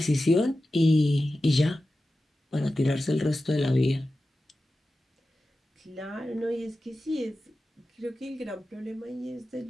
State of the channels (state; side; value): normal; both; correlation 0.93